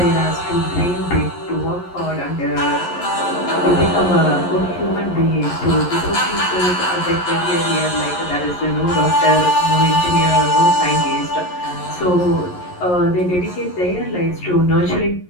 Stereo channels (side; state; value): right; late; 11 ms